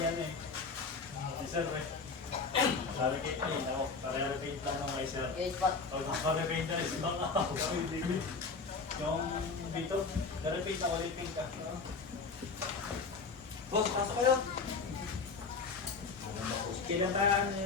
eh. Sir eh. Narakit na yun ako. Parearapate lang ng may sir. Okay, spot. Pag nakarapate na rin, ibang ako. Yung dito, narapate ako, repeat ka. Boss, pasok kayo. Kailan ba ano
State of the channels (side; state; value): right; quieter; 4.7 dB